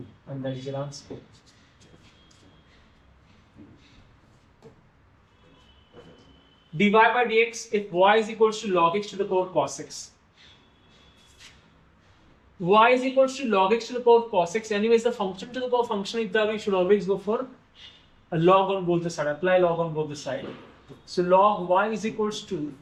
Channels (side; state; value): both; identical; correlation 1.00